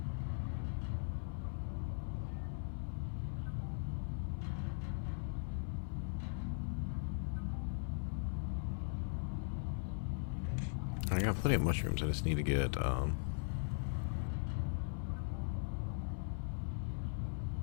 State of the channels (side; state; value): right; silent; 51 dB below the other